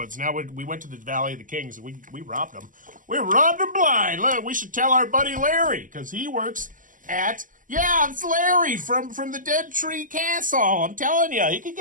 Now we went to the Valley of the Kings, and we robbed them. We robbed them blind. Look, we should tell our buddy Larry, because he works at... Yeah, it's Larry from the Dead Tree Castle. I'm telling you, he can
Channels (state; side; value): late; left; 0.38 ms